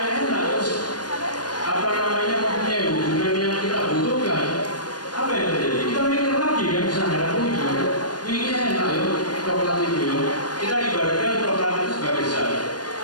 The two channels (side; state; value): right; late; 0.69 ms